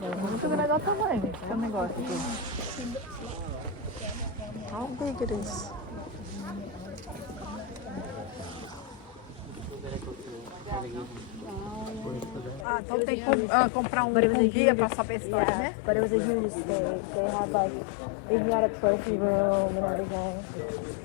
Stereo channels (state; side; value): drops out; right; at 12.7 s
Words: Muito grande, olha o tamanho desse negócio aqui. How big it is. Ah, então tem que comprar um guia para saber a história, né? But it was a huge stage. They had like, they had a trophy room and everything.